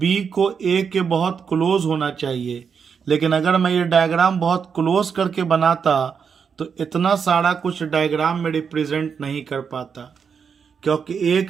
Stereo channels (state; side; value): quieter; left; 6.4 dB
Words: को ए के बहुत क्लोज होना चाहिए। लेकिन अगर मैं ये डायग्राम बहुत क्लोज करके बनाता तो इतना सारा कुछ डायग्राम में रिप्रेजेंट नहीं कर पाता, क्योंकि